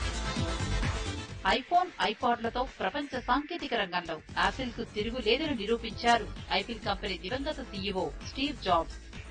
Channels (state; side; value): identical; both; correlation 1.00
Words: ఐఫోన్, ఐపాడ్లతో ప్రపంచ సాంకేతిక రంగంలో యాపిల్ కు తిరుగులేదని నిరూపించారు ఐపిల్ కంపెనీ దివంగత సీఈఓ స్టీవ్ జాబ్స్.